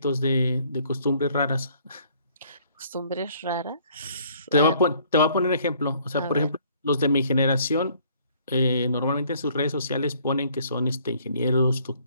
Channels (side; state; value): both; inverted; correlation -0.61